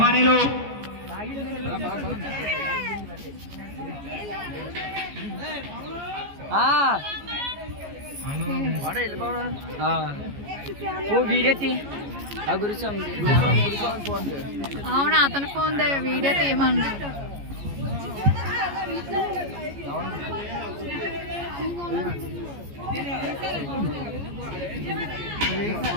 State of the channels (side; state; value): left; late; 14 ms